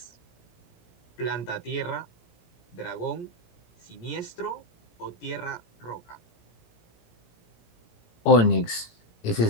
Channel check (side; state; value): right; late; 18 ms